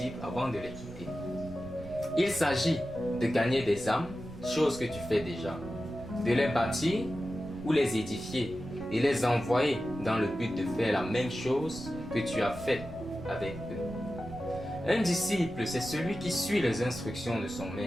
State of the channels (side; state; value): right; noise; rumble, 14 dB below the sound